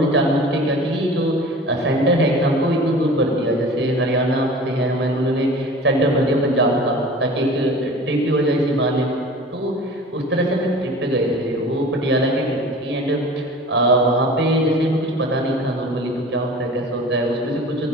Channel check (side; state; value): both; normal; correlation 0.41